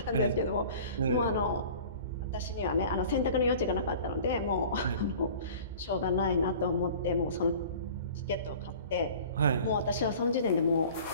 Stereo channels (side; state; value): both; inverted; correlation -0.44